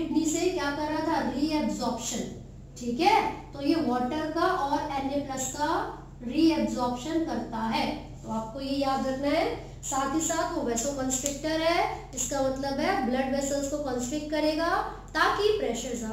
से क्या कर रहा था, रीएब्जॉर्प्शन, ठीक है। तो ये वाटर का और Na+ का रीएब्जॉर्प्शन करता है, तो आपको ये याद रखना है। साथ ही साथ वो वैसोकॉन्स्ट्रिक्टर है, इसका मतलब है ब्लड वेसल्स को कॉन्स्ट्रिक्ट करेगा ताकि प्रेशर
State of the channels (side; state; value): both; identical; correlation 1.00